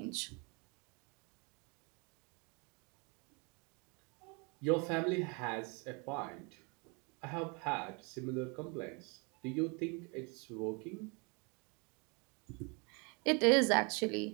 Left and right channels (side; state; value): left; quieter; 32.0 dB